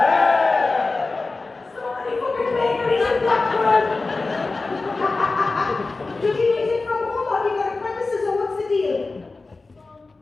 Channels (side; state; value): right; quieter; 3.6 dB